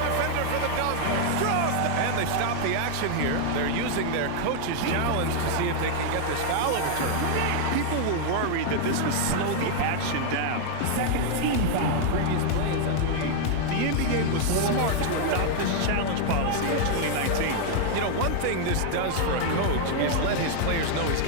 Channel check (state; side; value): different; both; correlation 0.00